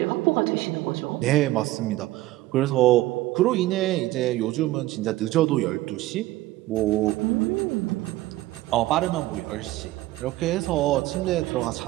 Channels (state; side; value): quieter; left; 17.2 dB